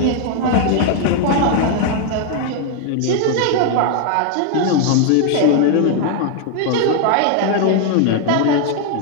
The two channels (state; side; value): different; both; correlation 0.00